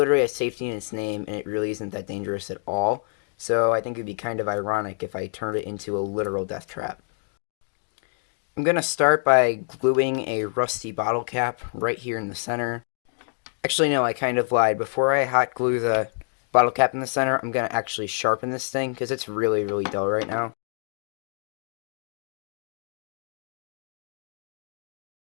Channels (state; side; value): silent; right; digital silence